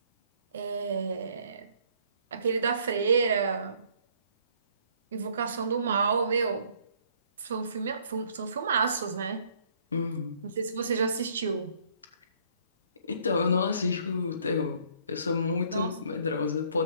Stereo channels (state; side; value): inverted; both; correlation -0.63